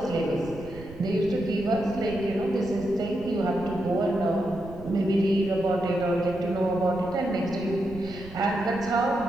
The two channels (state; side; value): noise; right; rumble, 16 dB below the sound